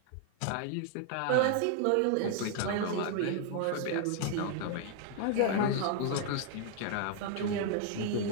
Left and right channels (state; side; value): different; both; correlation 0.00